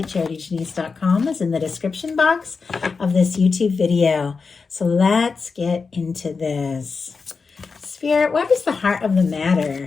charityjanice.com, is in the description box of this YouTube video. So let's get into this. Spirit, what is the heart of the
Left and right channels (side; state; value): right; quieter; 4.8 dB